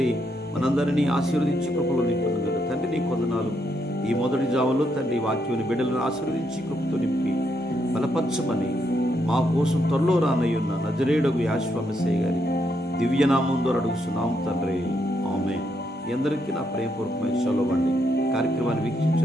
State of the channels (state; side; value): normal; both; correlation 0.78